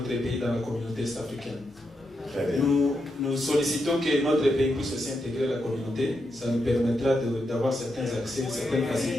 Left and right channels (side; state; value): both; normal; correlation 0.84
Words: pays dans la communauté est-africaine. Nous sollicitons que notre pays puisse aussi intégrer la communauté. Ça nous permettra d'avoir certains accès, certaines